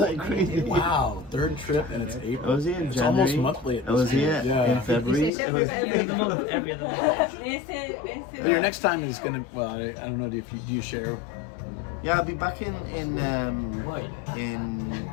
crazy. Wow, third trip and it's I April. was here in It's January. almost monthly. I was here in February. It's It was, every other month. Every other month. Your next time is gonna. Well, I don't know. Do you share? yeah, I'll be back in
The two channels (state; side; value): drops out; right; at 5.3 s